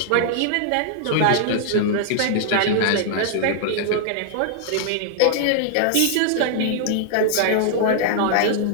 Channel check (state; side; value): different; both; correlation -0.01